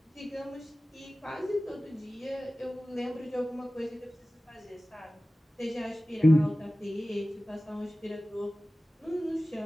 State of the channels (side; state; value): both; normal; correlation 0.97